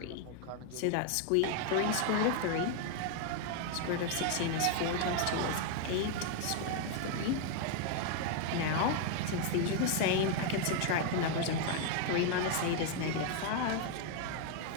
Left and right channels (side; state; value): both; different; correlation 0.00